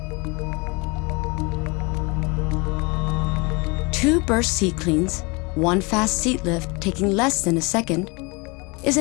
2 Burst Seat Cleans, 1 fast seat lift taking less than a second, is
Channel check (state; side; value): quieter; right; 28.3 dB